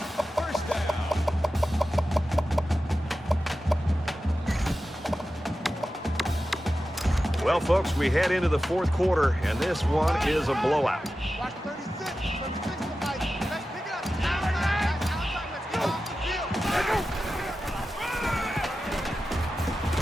First down. Well, folks, we head into the 4th quarter, and this one is a blowout. Watch 36 Mike. Let's pick it up. Outside. Let's go.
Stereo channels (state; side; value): normal; both; correlation 0.93